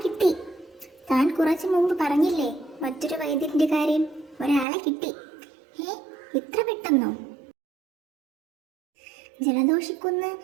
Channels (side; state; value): left; drops out; at 4.7 s